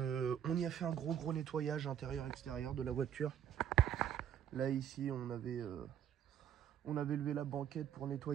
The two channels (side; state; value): left; quieter; 9.7 dB